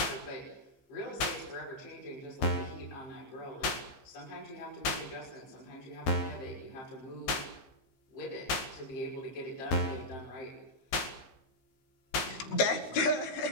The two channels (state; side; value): late; right; 15 ms